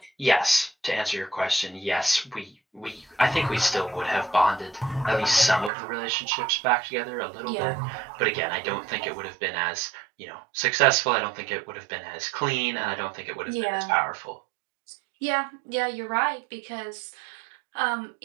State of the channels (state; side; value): drops out; left; at 5.7 s